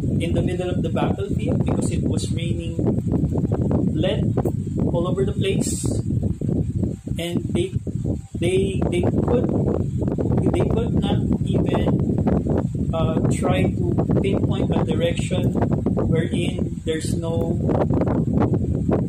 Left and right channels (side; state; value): both; identical; correlation 1.00